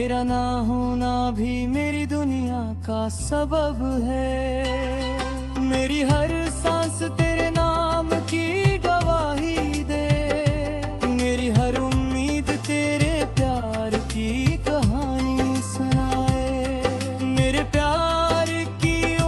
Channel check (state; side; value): identical; both; correlation 1.00